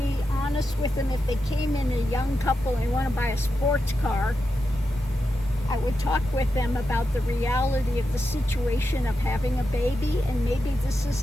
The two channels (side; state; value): both; normal; correlation 0.88